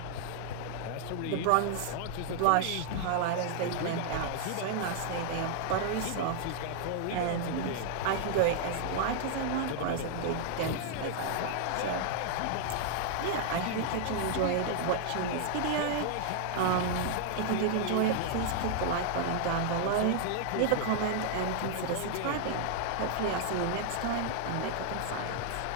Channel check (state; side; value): different; both; correlation 0.00